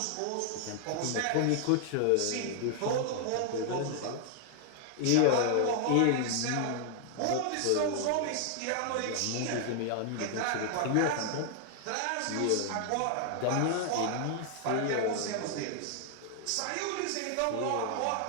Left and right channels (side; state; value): both; different; correlation 0.00